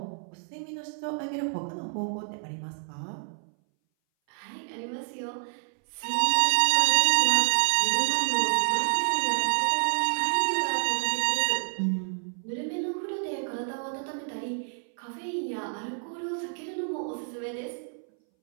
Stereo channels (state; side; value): silent; left; 59 dB below the other